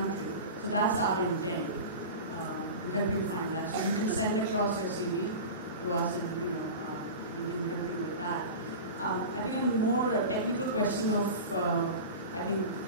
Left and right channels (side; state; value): both; inverted; correlation -0.30